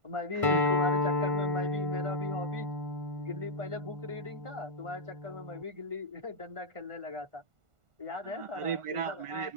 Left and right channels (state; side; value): late; left; 1.5 ms